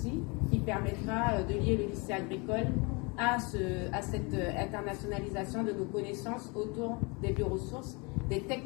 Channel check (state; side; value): quieter; right; 29.3 dB